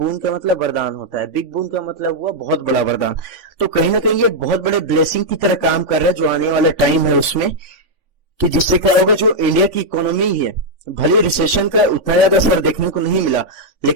का मतलब वरदान होता है, बिग बून का मतलब हुआ बहुत बड़ा वरदान। तो कहीं ना कहीं ये बहुत बड़े ब्लेसिंग की तरह काम कर रहा है जो आने वाला टाइम है उसमें, कि जिससे क्या होगा, जो इंडिया की इकोनॉमी है, भले रिसेशन का उतना ज्यादा असर देखने को नहीं मिला,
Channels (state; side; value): late; left; 3.5 ms